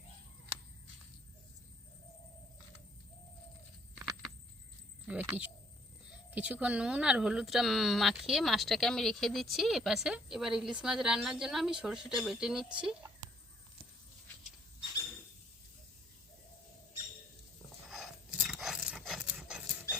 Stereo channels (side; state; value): both; normal; correlation 0.64